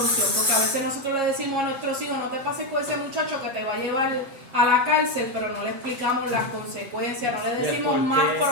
porque a veces nosotros le decimos a nuestros hijos: no te pases con ese muchacho que te va a llevar a la cárcel, pero no le explicamos las consecuencias, no le decimos más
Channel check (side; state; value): left; late; 7.3 ms